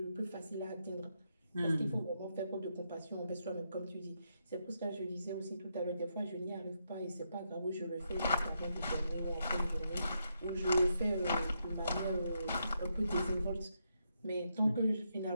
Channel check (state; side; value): inverted; both; correlation -0.80